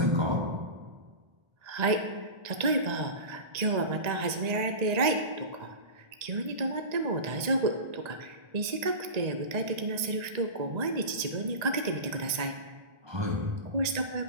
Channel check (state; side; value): late; left; 1.8 ms